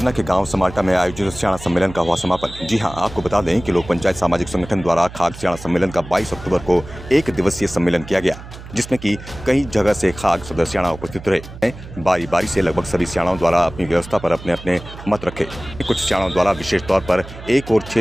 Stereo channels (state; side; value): noise; right; hum, 15 dB below the sound